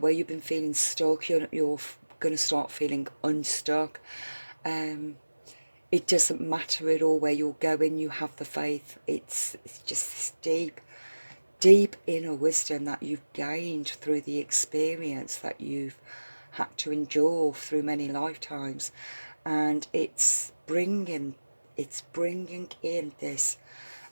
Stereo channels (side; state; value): both; inverted; correlation -1.00